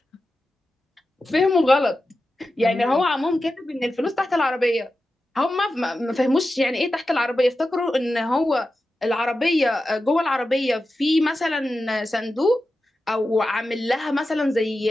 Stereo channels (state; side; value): normal; both; correlation 0.92